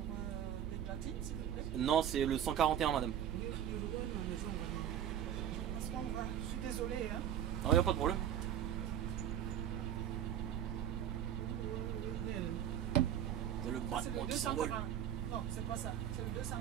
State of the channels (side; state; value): left; quieter; 10.1 dB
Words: les platines, s'il vous plaît? Non, c'est le 141, madame. Parce qu'on va. Je suis désolée, hein. Non, il n'y a pas de problème. C'est le C'est le battement qui s'envole. 240. Non, c'est pas ça. C'est le